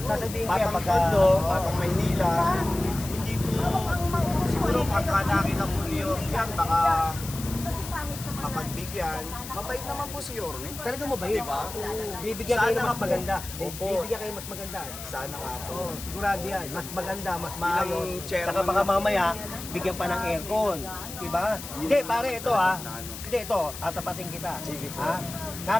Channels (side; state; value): left; noise; hiss, 11 dB below the sound